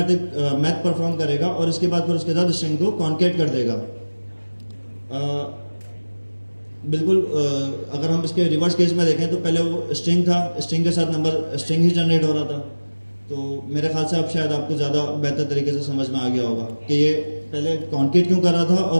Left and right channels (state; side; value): inverted; both; correlation -1.00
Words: मैथ परफॉर्म करेगा और इसके बाद फिर उसके साथ स्ट्रिंग को कॉन्केट कर देगा। बिल्कुल अगर हम इसके रिवर्स केस में देखें तो पहले वो स्ट्रिंग था, स्ट्रिंग के साथ नंबर स्ट्रिंग ही जनरेट हो रहा था। तो मेरे ख्याल से अब शायद आपको ज़्यादा बेहतर तरीके से समझ में आ गया होगा कि ये पहले कॉन्केट क्यों कर रहा था